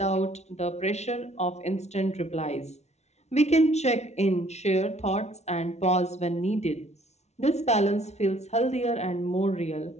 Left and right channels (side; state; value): right; late; 0.32 ms